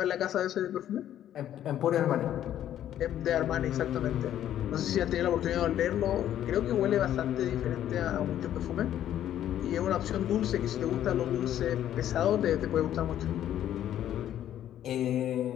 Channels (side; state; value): right; quieter; 11.3 dB